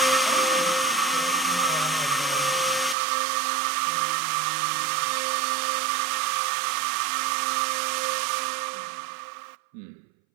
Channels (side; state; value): left; drops out; at 3.0 s